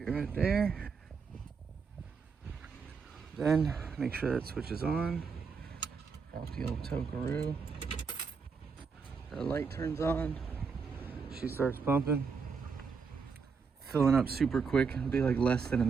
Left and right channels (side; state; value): left; quieter; 5.5 dB